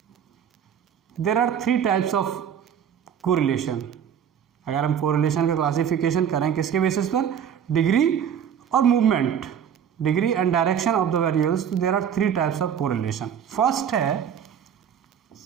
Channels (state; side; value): quieter; left; 8.5 dB